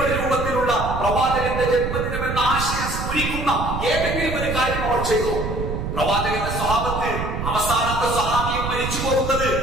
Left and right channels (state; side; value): noise; right; rumble, 4 dB below the sound